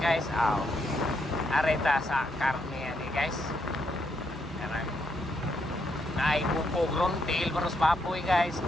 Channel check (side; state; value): both; normal; correlation 0.77